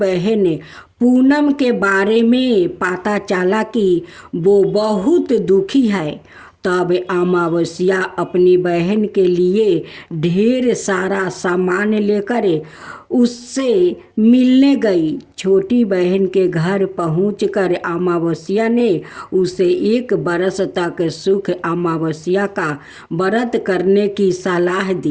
पूनम के बारे में पता चला कि वो बहुत दुखी है, तब अमावस्या अपनी बहन के लिए ढेर सारा सामान लेकर उससे मिलने गई। छोटी बहन के घर पहुंचकर अमावस्या ने उसे 1 बरस तक सुख अमावस्या का व्रत करने की सलाह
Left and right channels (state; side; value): identical; both; correlation 1.00